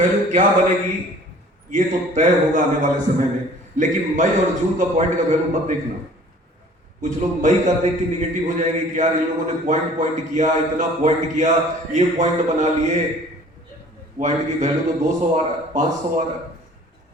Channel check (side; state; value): both; normal; correlation 0.50